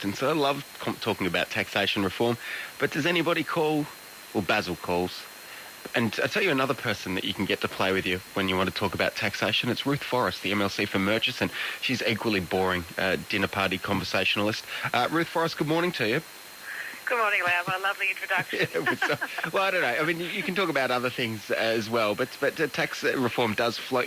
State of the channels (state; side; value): identical; both; correlation 1.00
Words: I love talking about taxation reform, but does anybody call? Well, Basil calls. And I'll tell you another person that you can get to play with you when you want to talk about taxation. It's Ruth Forrest, the MLC for Murchison. She's equally boring, dinner party conversationalist. Ruth Forrest, good morning to you. Good morning, Lau. A lovely introduction. Well, I don't know. I mean, you can talk about other things as well, but tax reform does